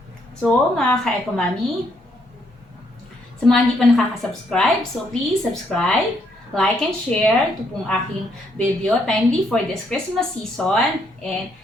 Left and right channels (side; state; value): both; normal; correlation 0.72